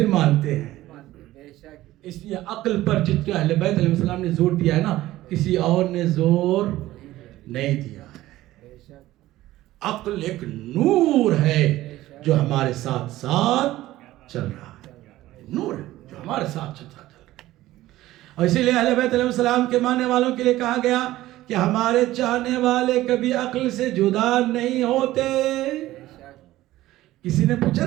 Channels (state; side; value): quieter; left; 15.8 dB